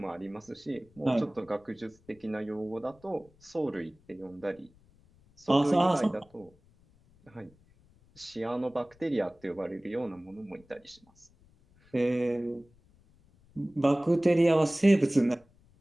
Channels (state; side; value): noise; left; rumble, 30 dB below the sound